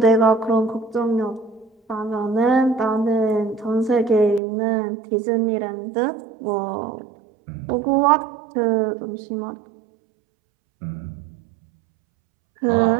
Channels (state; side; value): drops out; left; at 4.4 s